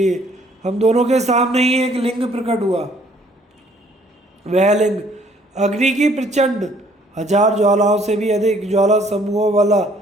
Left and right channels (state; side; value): normal; both; correlation 0.61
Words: हम दोनों के सामने ही एक लिंग प्रकट हुआ। वह लिंग अग्नि की प्रचंड 1000 ज्वालाओं से भी अधिक ज्वाला समूहों वाला